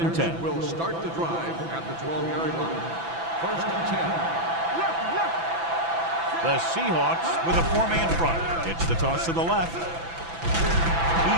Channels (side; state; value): left; late; 6.0 ms